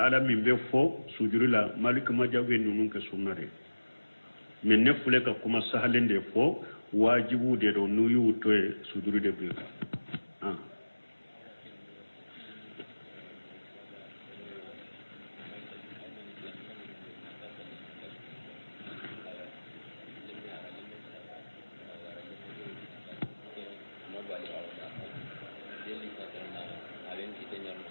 be fo sujudi la malik majah be nunun ke sunnare mais ne fule ka kuma sahalende fo wajibu de do nuyu to sujudi de bika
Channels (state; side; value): inverted; both; correlation -1.00